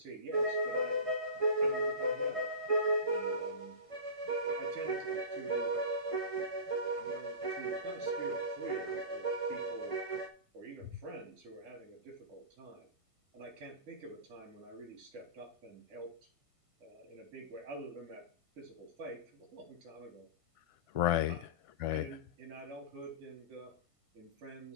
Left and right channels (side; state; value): left; late; 1.5 ms